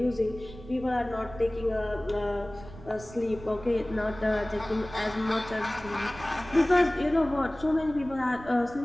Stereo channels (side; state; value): right; noise; rumble, 16 dB below the sound